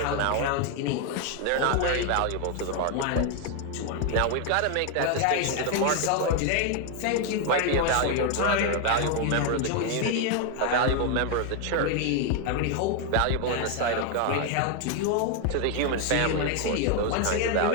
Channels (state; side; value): different; both; correlation 0.01